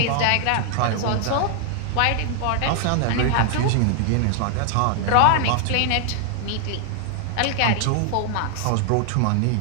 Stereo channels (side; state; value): both; different; correlation 0.00